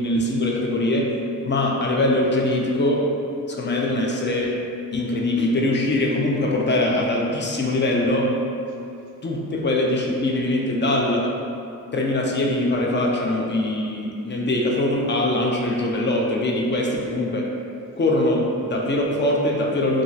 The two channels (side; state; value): both; normal; correlation 0.27